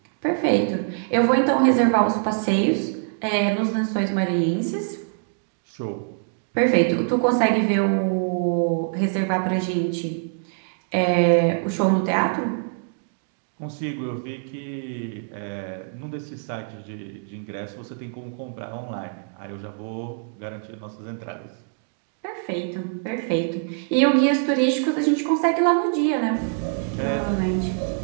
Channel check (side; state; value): left; silent; digital silence